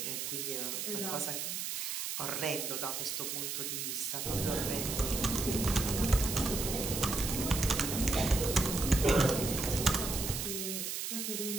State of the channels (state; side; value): noise; right; hiss, 3 dB below the sound